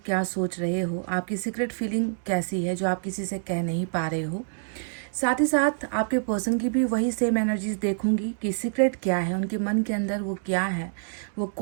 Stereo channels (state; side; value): silent; left; digital silence